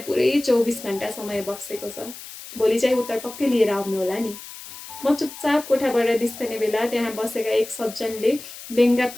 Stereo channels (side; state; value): left; noise; hiss, 14 dB below the sound